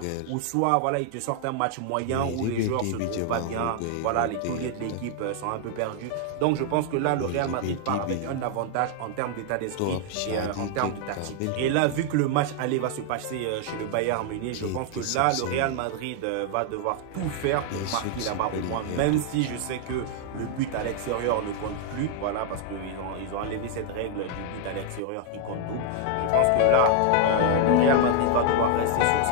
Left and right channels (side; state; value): both; different; correlation 0.00